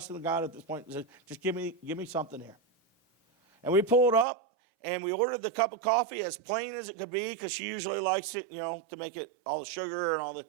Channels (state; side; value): drops out; left; at 4.2 s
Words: God at this point. I said, just give me something here. And we pulled up, and we ordered the cup of coffee as plain as it could be, because she usually likes it, to make it all the sugar and all the.